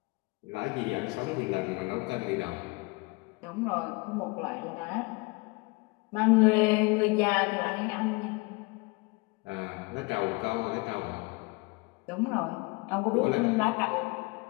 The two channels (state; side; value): quieter; right; 26.8 dB